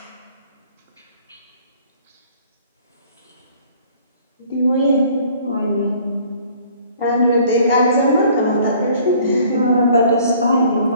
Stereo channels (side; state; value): both; inverted; correlation -0.55